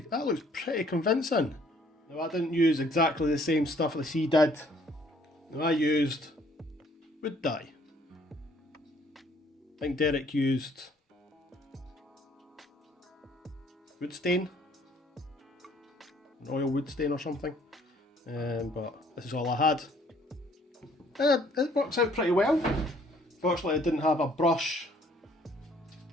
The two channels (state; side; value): normal; both; correlation 0.61